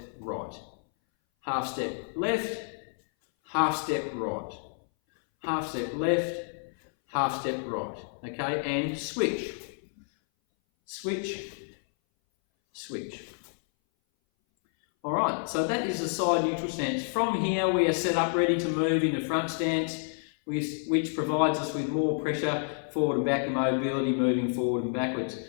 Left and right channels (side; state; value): right; silent; 58 dB below the other